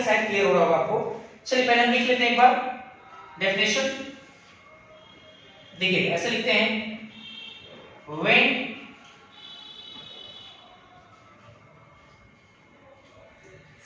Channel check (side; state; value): both; identical; correlation 1.00